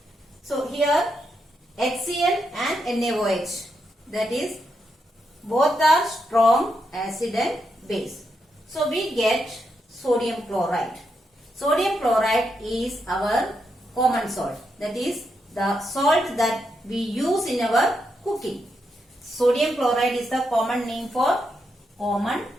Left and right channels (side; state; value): both; normal; correlation 0.82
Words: So here HCl and NaOH, that is both are strong acid and base. So we get sodium chloride. Sodium chloride is our common salt. That is the salt that we use in our cooking. Sodium chloride is the common name for common